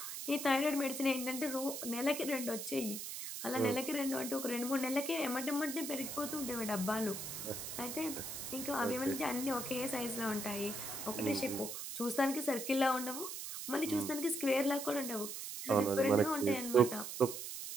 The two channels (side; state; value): right; noise; hiss, 6 dB below the sound